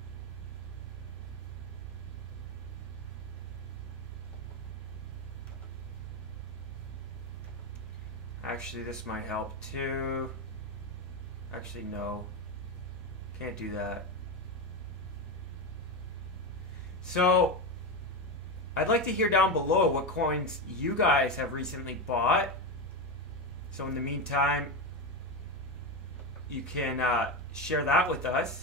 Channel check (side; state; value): both; normal; correlation 0.14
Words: Actually, this might help too. Actually, no. Can't do that. So, I'd like to hear down below what coins you guys have recently bought. So in the meantime, you can share that with